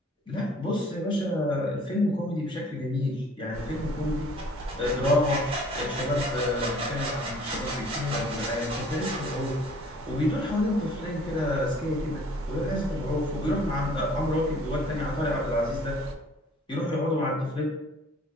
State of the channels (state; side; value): normal; both; correlation 0.54